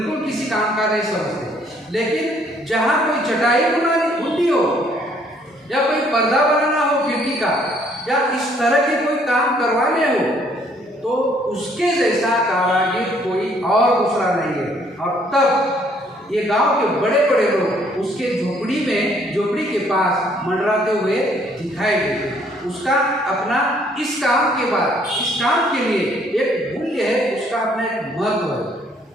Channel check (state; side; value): normal; both; correlation 0.64